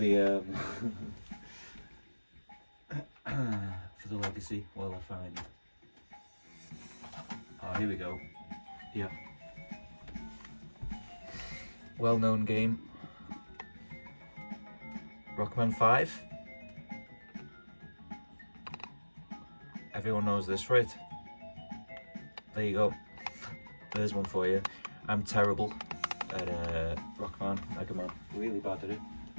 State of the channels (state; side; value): inverted; both; correlation -1.00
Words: for the legacy while I find it. Oh, here we go. Yeah. Well-known game. Rockman 5. Everyone knows this, right? There you go. There's one for you. I'm terrible at Rockman, Mega Man. Really bad at it.